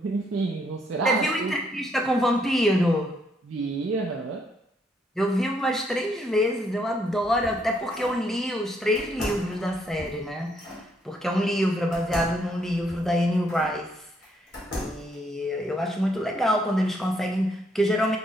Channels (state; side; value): normal; both; correlation 0.72